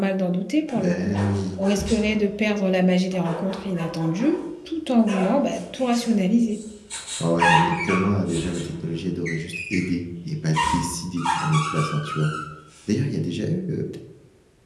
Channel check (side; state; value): both; identical; correlation 1.00